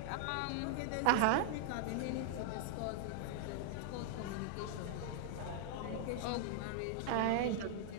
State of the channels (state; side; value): different; both; correlation -0.01